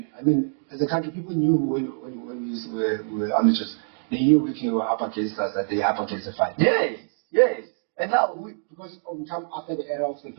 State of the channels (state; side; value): silent; left; digital silence